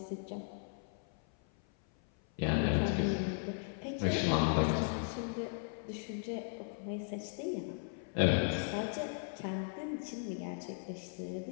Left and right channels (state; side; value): silent; right; 53 dB below the other